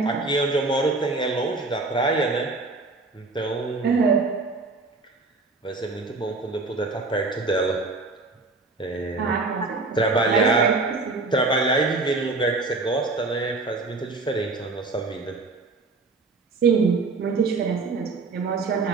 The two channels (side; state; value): left; quieter; 3.6 dB